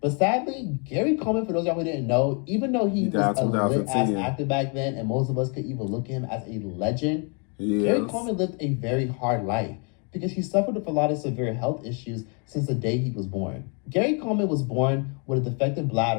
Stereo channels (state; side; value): quieter; right; 37.4 dB